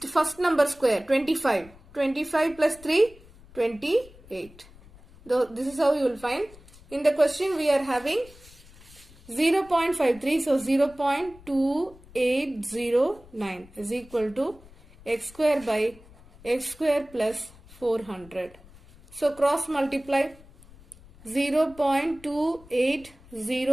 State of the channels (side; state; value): left; noise; rumble, 23 dB below the sound